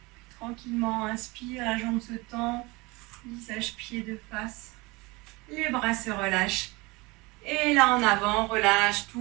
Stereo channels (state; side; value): quieter; left; 24.2 dB